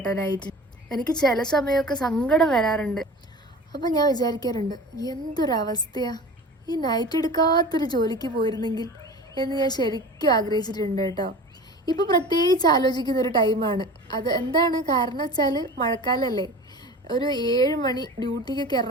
നൈറ്റ്. എനിക്ക് ചില സമയമൊക്കെ സങ്കടം വരാറുണ്ട്. അപ്പം ഞാൻ വിചാരിക്കാറുണ്ട്, എന്തൊരവസ്ഥയാ, ഈ നൈറ്റ് എടുക്കാത്തൊരു ജോലിക്ക് പോയിരുന്നെങ്കിൽ എന്ന് ഞാൻ ശരിക്കും ആഗ്രഹിച്ചിട്ടുണ്ട് കേട്ടോ. ഇപ്പോൾ പ്രത്യേകിച്ച് ആലോചിക്കുന്ന ഒരു ടൈമാണ് അത്. എന്താണ് കാരണം വെച്ചാൽ മഴക്കാലമല്ലേ. ഒരു 7 മണി ഡ്യൂട്ടിക്കൊക്കെ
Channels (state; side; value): normal; both; correlation 0.37